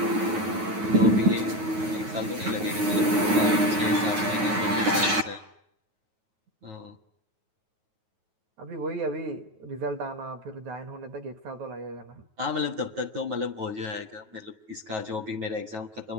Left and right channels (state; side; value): late; left; 9.3 ms